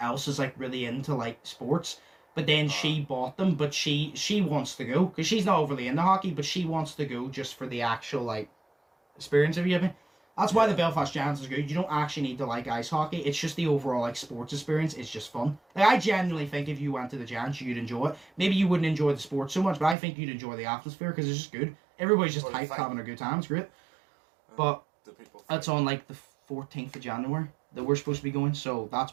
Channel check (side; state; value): left; drops out; at 20.0 s